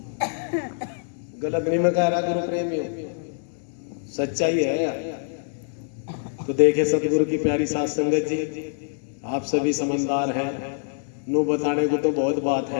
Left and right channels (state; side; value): silent; right; digital silence